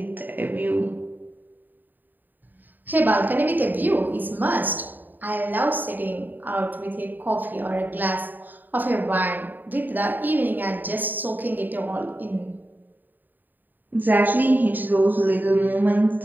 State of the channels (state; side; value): late; left; 0.089 ms